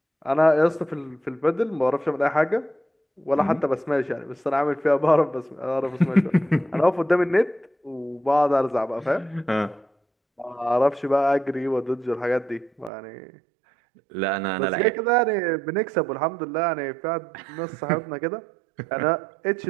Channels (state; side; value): drops out; left; at 12.9 s